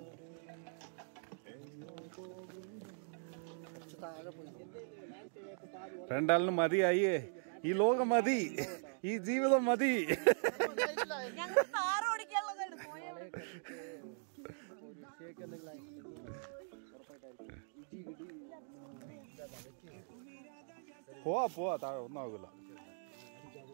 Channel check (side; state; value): left; silent; digital silence